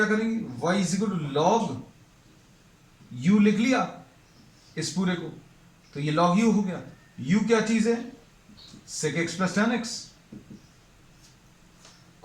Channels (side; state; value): both; identical; correlation 1.00